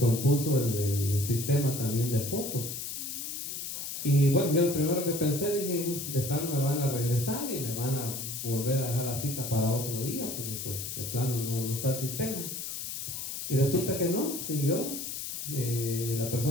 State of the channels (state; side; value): noise; left; hiss, 6 dB below the sound